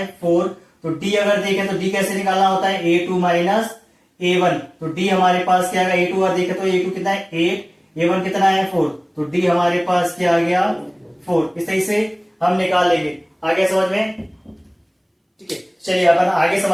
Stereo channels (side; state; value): both; identical; correlation 1.00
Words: 4। तो डी अगर देखें तो डी कैसे निकालना होता है? a2 माइनस a1, तो डी हमारे पास क्या आएगा? a2 अगर देखें तो a2 कितना है? 8, a1 कितना है? 4, तो डी हमारे पास क्या आ गया? 4। इस तरीके से हम निकाल लेंगे। आगे समझ में? ठीक है, चलिए अपन आगे